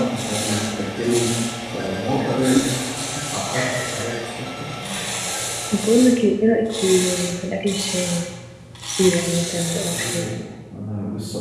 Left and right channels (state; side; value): identical; both; correlation 1.00